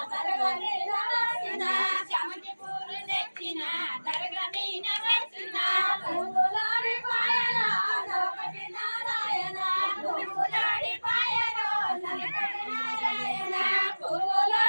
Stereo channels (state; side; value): inverted; both; correlation -1.00